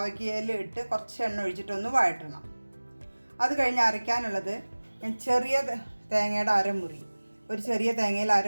ഇട്ട് കുറച്ച് എണ്ണ ഒഴിച്ചിട്ടൊന്ന് വഴറ്റണം. അത് കഴിഞ്ഞ് അരയ്ക്കാനുള്ളത് ഞാൻ ചെറിയ തേങ്ങയുടെ അരമുറി, ഒരു ചെറിയ തേങ്ങയിൽ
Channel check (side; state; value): both; inverted; correlation -1.00